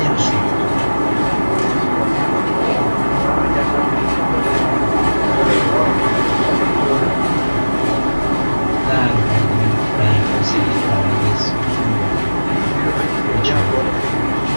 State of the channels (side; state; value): both; inverted; correlation -1.00